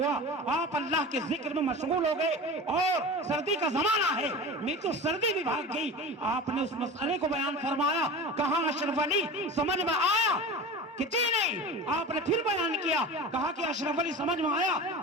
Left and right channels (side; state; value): both; normal; correlation 0.33